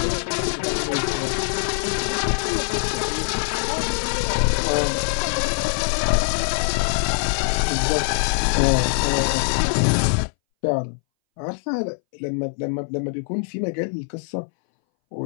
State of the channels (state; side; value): silent; right; 61 dB below the other